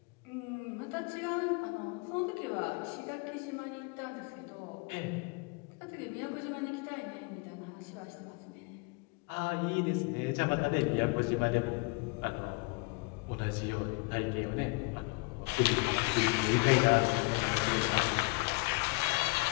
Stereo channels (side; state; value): right; quieter; 26.5 dB